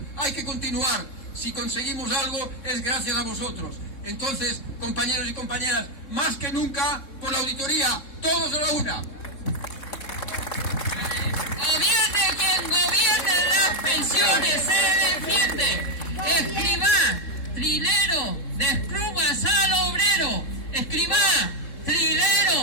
hay que continuar. Si conseguimos algo es gracias a vosotros. Entonces, compañeros y compañeras, más que nunca por la auditoría, todos a la una. Gobierne quien gobierne, las pensiones se defiende. Escribá, trilero, desplumas al obrero. Escribá,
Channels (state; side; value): late; right; 3.7 ms